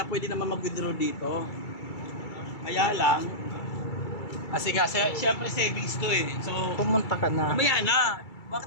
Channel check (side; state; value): right; late; 2.3 ms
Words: pwede naman mag-withdraw dito. Kaya lang, kasi nga, siyempre savings to So, Pumunta ka na. mamaya na.